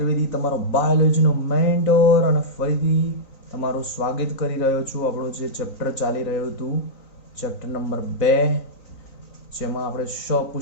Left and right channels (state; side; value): late; right; 3.9 ms